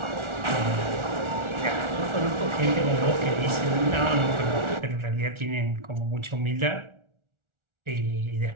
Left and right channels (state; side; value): late; left; 1.4 ms